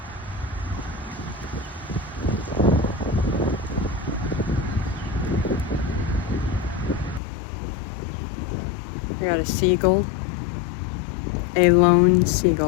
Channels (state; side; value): drops out; right; at 7.2 s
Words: I got a seagull, a lone